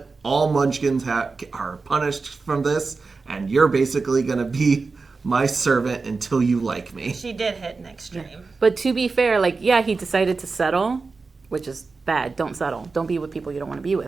All Munchkins are punished from this. And you're basically going to be my servant until you like me. She did hit an extreme. Yeah. But to be fair, he decided to settle, which is bad. Don't settle. Don't be with people you don't want to be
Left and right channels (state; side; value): quieter; left; 4.2 dB